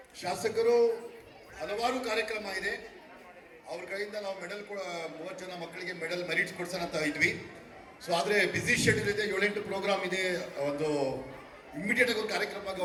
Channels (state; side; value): identical; both; correlation 1.00